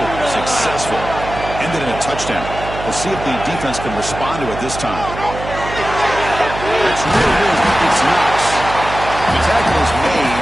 successful. Ended in a touchdown. We'll see if the defense can respond to it this time. That's really good. It's Knox. The tackle is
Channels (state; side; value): noise; right; hum, 9 dB below the sound